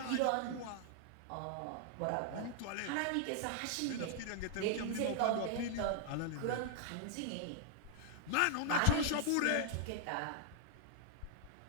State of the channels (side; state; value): both; different; correlation 0.00